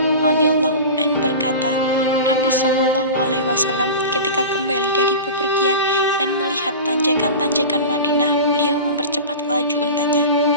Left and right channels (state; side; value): inverted; both; correlation -0.31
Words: radhiyallahu an berkata, Nabi SAW ketika kembali dari bepergian dan melihat tanjakan-tanjakan Madinah, beliau mempercepat laju untanya.